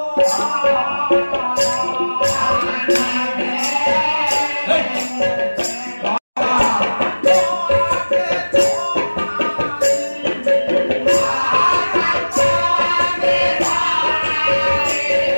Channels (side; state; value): both; inverted; correlation -1.00